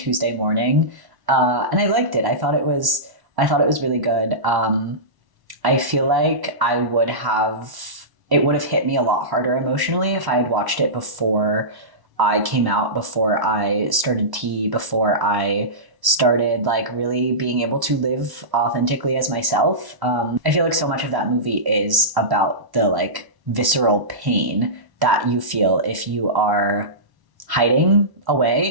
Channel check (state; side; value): late; left; 1.1 ms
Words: morning, and I liked it. I thought it was really good. I feel like it would have hit me a lot harder emotionally if I had watched it before I came out, before I started tea, before I started like really being able to live authentically as myself. I feel like so much of that movie is about the like visceral pain that you feel if you are hiding